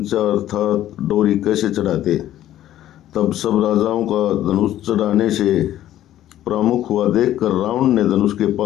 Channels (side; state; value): right; quieter; 12.8 dB